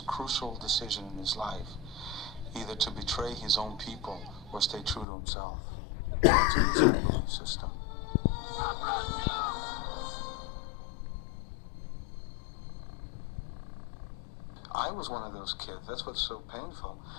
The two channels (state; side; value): drops out; right; at 5.1 s